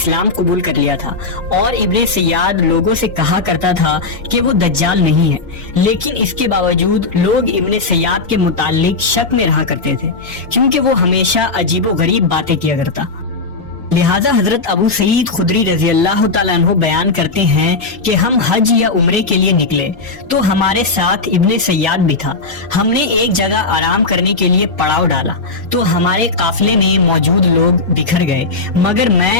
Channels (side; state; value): right; quieter; 3.8 dB